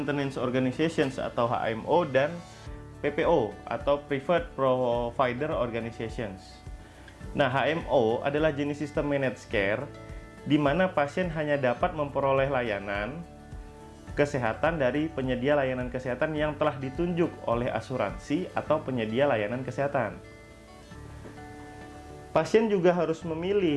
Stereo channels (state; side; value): identical; both; correlation 1.00